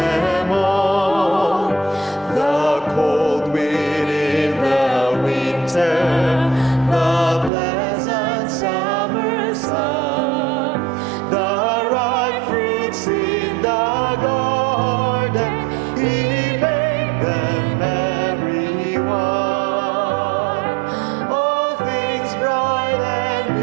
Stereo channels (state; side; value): drops out; left; at 7.5 s